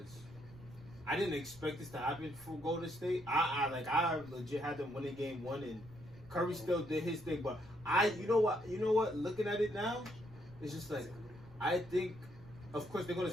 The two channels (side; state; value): right; noise; rumble, 20 dB below the sound